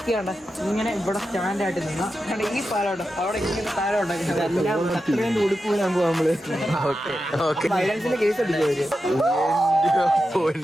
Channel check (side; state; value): both; normal; correlation 0.90